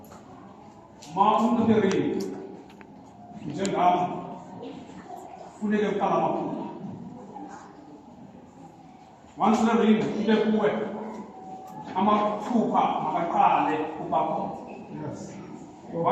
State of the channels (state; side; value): identical; both; correlation 1.00